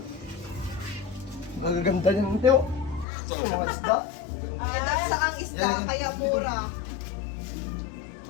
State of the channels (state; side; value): drops out; right; at 3.1 s